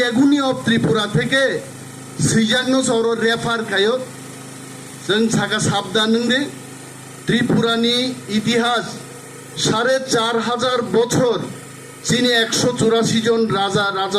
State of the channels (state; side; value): identical; both; correlation 1.00